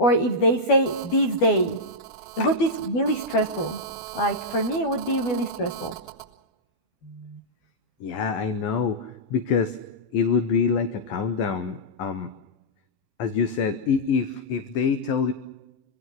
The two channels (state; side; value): late; right; 12 ms